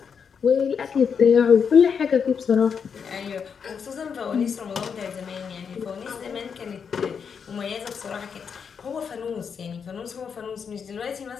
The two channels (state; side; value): quieter; right; 6.6 dB